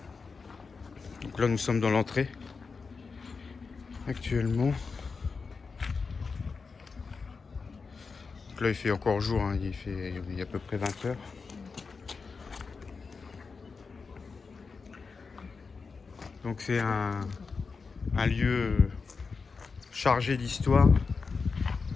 Donc là nous sommes dans l'entrée actuellement. Donc là il fait encore jour, hein. Il est à peu près 20 heures. Donc c'est un lieu chargé d'histoire.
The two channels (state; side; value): quieter; right; 4.8 dB